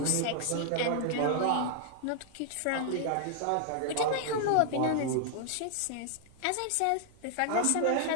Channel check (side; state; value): both; different; correlation 0.00